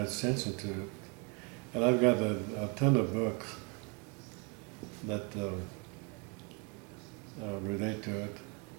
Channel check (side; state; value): left; quieter; 31.7 dB